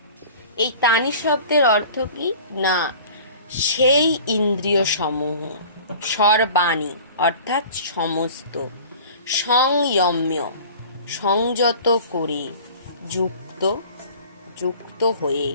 এই তানি শব্দের অর্থ কি না সেই ইন্দ্রিয় সমূহ, সর্বাণি অর্থাৎ সমস্ত, সংযম্য সংযত করে, যুক্ত হয়ে,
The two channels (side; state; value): both; inverted; correlation -0.44